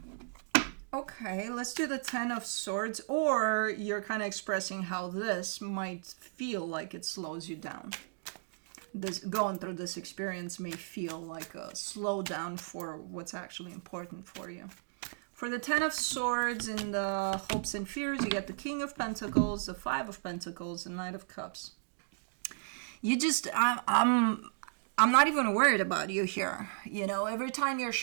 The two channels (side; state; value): left; silent; digital silence